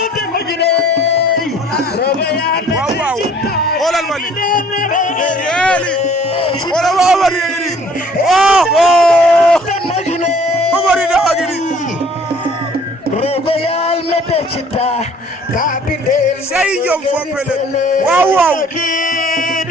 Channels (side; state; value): both; normal; correlation 0.55